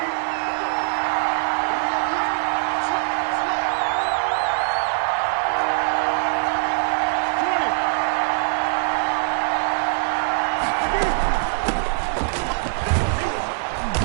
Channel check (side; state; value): left; silent; digital silence